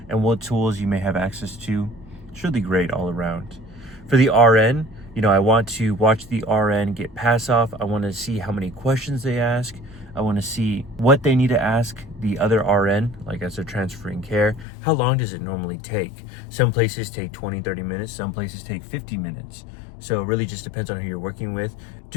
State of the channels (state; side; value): drops out; right; at 14.7 s